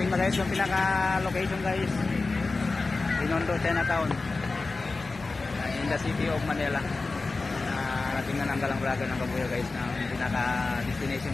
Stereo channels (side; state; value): right; quieter; 3.7 dB